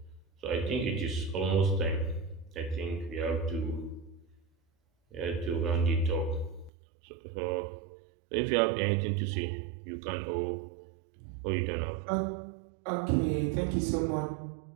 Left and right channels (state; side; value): drops out; left; at 6.7 s